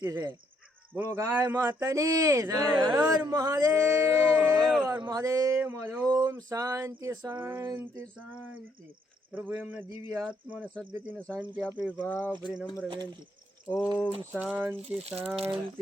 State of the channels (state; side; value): normal; both; correlation 0.71